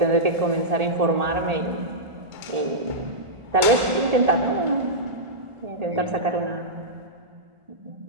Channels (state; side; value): late; left; 1.4 ms